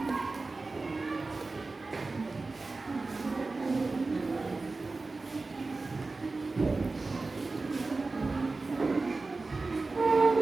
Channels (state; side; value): quieter; left; 3.6 dB